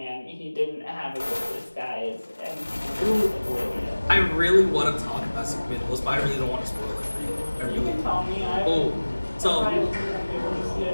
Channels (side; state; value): both; inverted; correlation -1.00